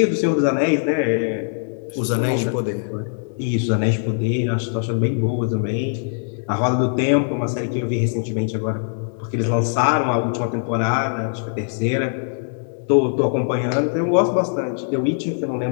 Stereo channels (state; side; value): silent; right; 65 dB below the other